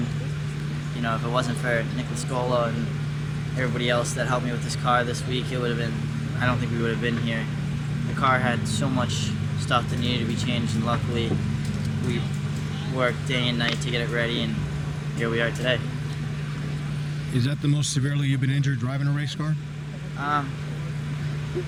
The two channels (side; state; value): both; identical; correlation 1.00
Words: If it wasn't for Nicholas Scolo and everybody else that helped me with this car this week, it would have been, I don't think we would have been here. The car had so much stuff that needed to be changed, and luckily we worked day and night to get it ready, and here we are today. Is that the most severely you've been injured driving a race car?